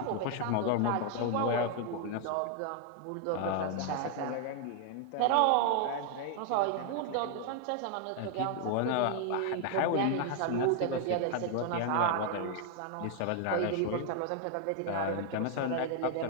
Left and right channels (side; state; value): both; different; correlation 0.00